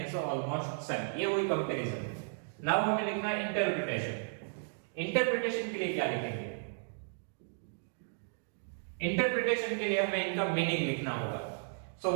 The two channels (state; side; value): silent; left; digital silence